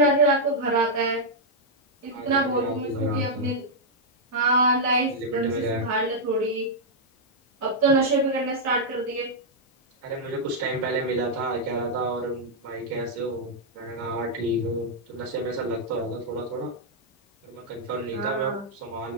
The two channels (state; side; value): normal; both; correlation -0.06